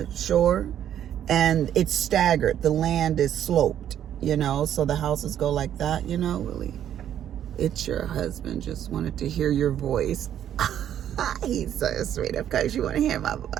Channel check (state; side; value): quieter; left; 10.3 dB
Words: shore, and it's staggered. The land is sloped, you know, so the houses go like that, you know. Really, it's your husband. Just wanted to hear your voice. He's so sweet. Of course you want to hear my